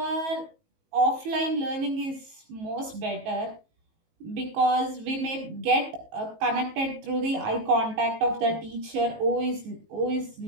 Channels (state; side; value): late; left; 19 ms